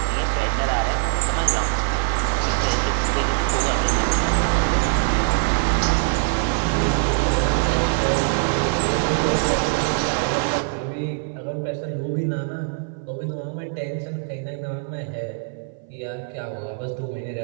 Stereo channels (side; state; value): left; silent; 57 dB below the other